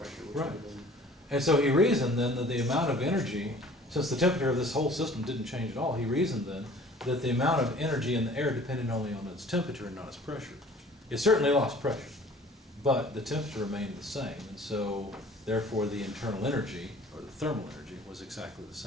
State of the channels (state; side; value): normal; both; correlation 0.50